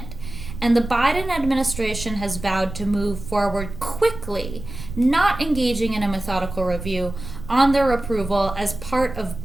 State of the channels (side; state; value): right; noise; rumble, 11 dB below the sound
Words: and the Biden administration has vowed to move forward quickly, not engaging in a methodical review, on their approval as part of